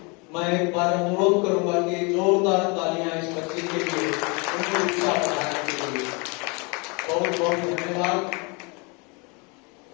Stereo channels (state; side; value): quieter; right; 30.6 dB